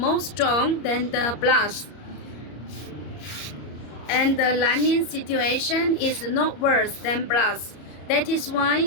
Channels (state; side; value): late; right; 34 ms